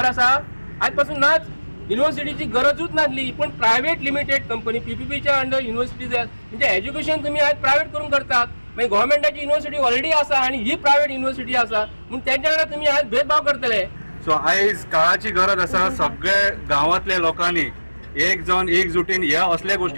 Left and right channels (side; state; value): both; inverted; correlation -1.00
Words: आसा? आयज पासून नाच. युनिव्हर्सिटीची गरजूच नासली पूण प्रायवेट लिमिटेड कंपनी PPPच्या अंडर युनिव्हर्सिटी म्हणजे एज्युकेशन तुमी आयज प्रायवेट करून करतात. मागीर गव्हर्मेंटाची युनिव्हर्सिटी ऑलरेडी आसा आनी ही प्रायवेट युनिव्हर्सिटी आसा म्हणून तेंच्या वांगडा तुमी आयज भेदभाव करतले. सो आयज काळाची गरज आसा सगळे गांवांतल्या लोकांनी एक जावन एकजुटीन ह्या असल्या